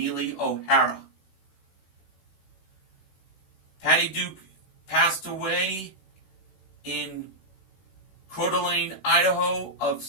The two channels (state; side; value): late; right; 16 ms